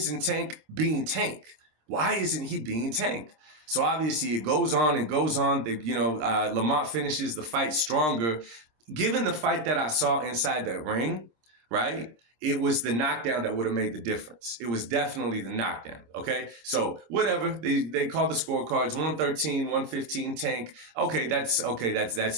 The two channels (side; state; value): left; late; 26 ms